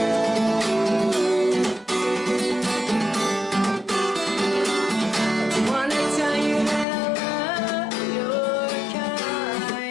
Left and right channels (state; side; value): drops out; right; at 6.9 s